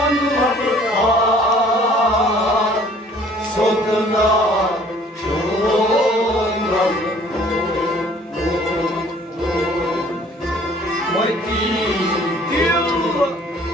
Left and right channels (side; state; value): both; normal; correlation 0.55